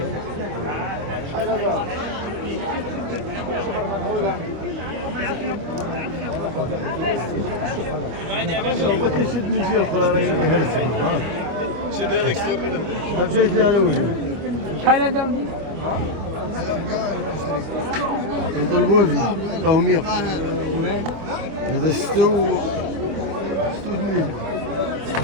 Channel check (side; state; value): left; late; 25 ms